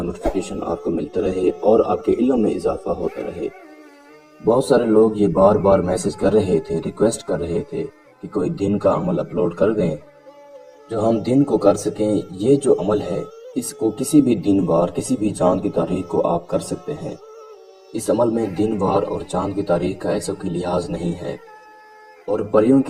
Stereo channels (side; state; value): both; identical; correlation 1.00